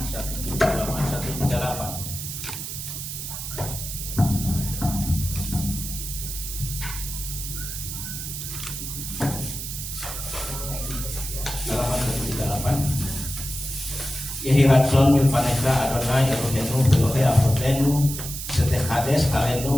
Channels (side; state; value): right; noise; hiss, 7 dB below the sound